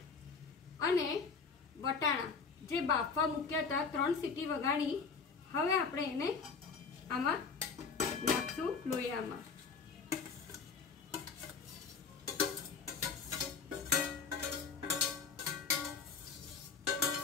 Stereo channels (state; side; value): quieter; right; 5.3 dB